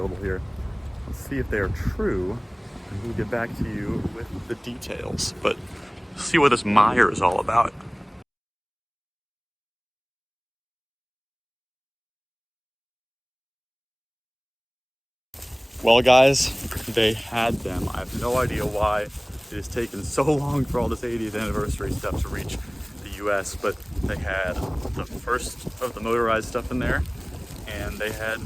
here. Let's see if they are true, and we'll get back to you with the details. But see what this Meijer is all about. Well, guys, they had them. I have no idea why it has taken so long for all this 80th anniversary stuff to reach the US, but they had the first of the motorized stuff in there, and they had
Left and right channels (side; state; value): both; identical; correlation 1.00